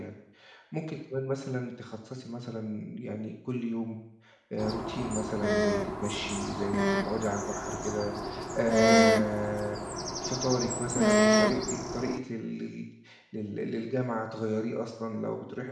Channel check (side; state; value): both; identical; correlation 1.00